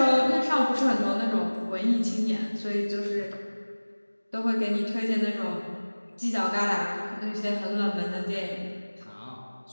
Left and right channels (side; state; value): both; inverted; correlation -1.00